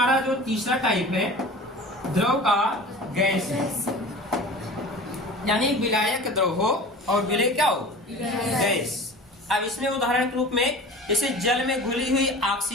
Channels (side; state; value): both; normal; correlation 0.38